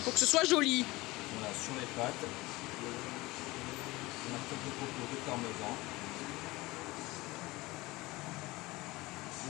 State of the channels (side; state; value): right; quieter; 20.9 dB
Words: Faut que ce soit joli. Voilà, sur les pâtes. On a quelques copeaux de parmesan.